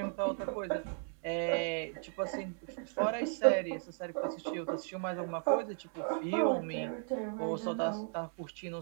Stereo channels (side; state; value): left; silent; 54 dB below the other